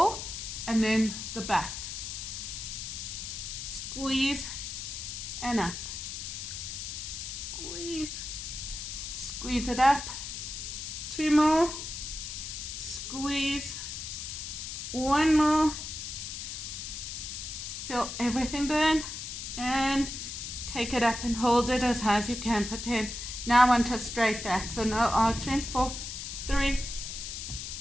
and then the back. Squeeze and up. Squeeze. Squeeze it up. 2 more. Squeeze. 1 more. Feel everything burn. And take it up and hold it as high as you can for 10. Now I want a straight back, so no arching. 4, 3,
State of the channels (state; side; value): noise; left; hiss, 6 dB below the sound